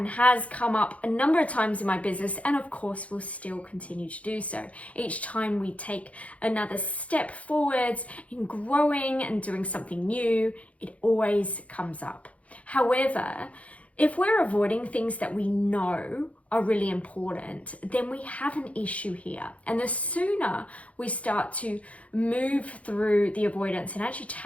has come up a number of times in my business, and of course will still continue to do so. Each time we take another step forwards in growing and doing something new, it always comes up. However, if we're avoiding things that we know are really important, then we have an issue here. And the sooner we start to move through the avoidance and actually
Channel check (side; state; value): right; late; 0.065 ms